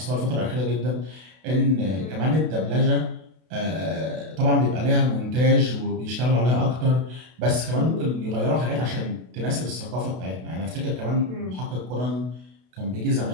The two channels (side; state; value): left; late; 32 ms